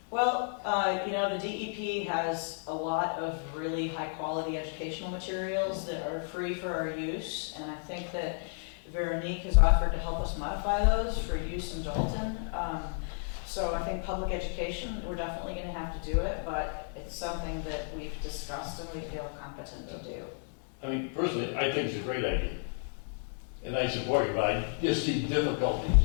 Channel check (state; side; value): silent; right; 56 dB below the other